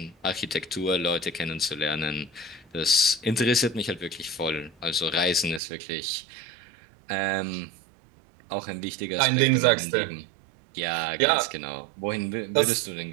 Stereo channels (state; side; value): drops out; left; at 5.6 s